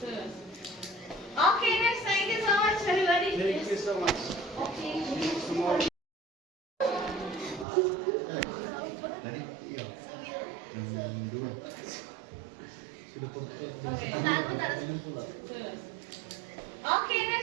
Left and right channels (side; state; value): left; drops out; at 7.7 s